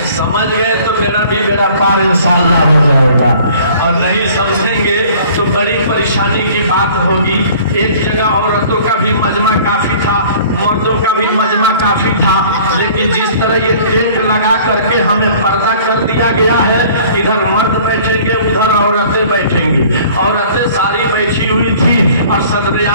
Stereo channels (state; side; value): inverted; both; correlation -0.51